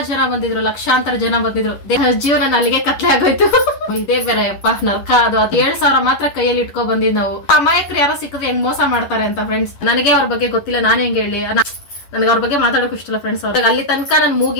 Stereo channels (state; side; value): late; right; 11 ms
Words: ಜನ ಬಂದಿದ್ರು, ಲಕ್ಷಾಂತರ ಜನ ಬಂದಿದ್ರು. ಜೀವನ ಅಲ್ಲಿಗೆ ಕತ್ಲೆ ಆಗೋಯ್ತು. ಇದೇ ಬೇರೆ ಅಪ್ಪ ನರ್ಕ. ಅದು 7,000 ಮಾತ್ರ ಕೈಯಲ್ಲಿ ಇಟ್ಕೊ ಬಂದಿದ್ ನಾವು. ಅಮಾಯಕರು ಯಾರೋ ಸಿಕ್ಕಿದ್ರೆ ಹೆಂಗ್ ಮೋಸ ಮಾಡ್ತಾರೆ ಅಂತ ಫ್ರೆಂಡ್ಸ್. ನನಗೆ ಅವ್ರ ಬಗ್ಗೆ ಗೊತ್ತಿಲ್ಲ, ನಾನ್ ಹೆಂಗ್ ಹೇಳಿ. ನನಗೆ ಅವ್ರ ಬಗ್ಗೆ ಮಾತಾಡೋಕ್ ಇಷ್ಟಲ್ಲ ಫ್ರೆಂಡ್ಸ್. ಅವ್ರಿಗೆ ಅಲ್ಲಿ ತನಕ ನನ್